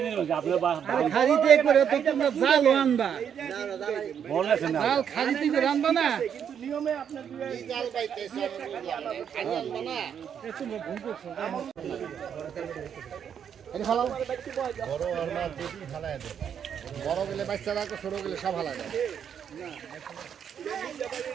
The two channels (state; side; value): quieter; left; 8.2 dB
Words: দিল আপনার খারিতে করে তো তোমরা জাল আনবা বলেছেন না জাল খারিতে করে আনবা না কিন্তু নিয়মে আপনার দুই জাল পাইতেছ খালি আনবা না তোমরা ভুল করছো এটা ফালাও বড় আর না দুটি ফালায় দে বড় গেলে বাচ্চা রাখো ছোট গেলে সব ফালায় দে